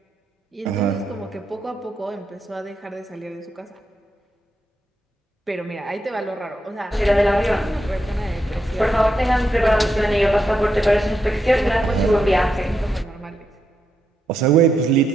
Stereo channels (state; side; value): normal; both; correlation 0.83